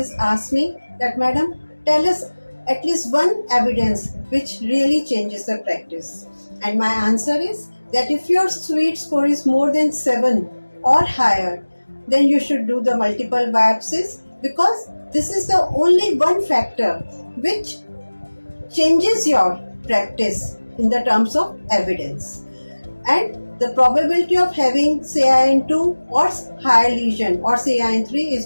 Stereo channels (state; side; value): inverted; both; correlation -1.00